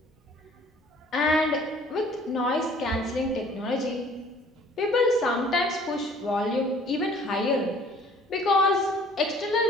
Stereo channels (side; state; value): both; normal; correlation 0.54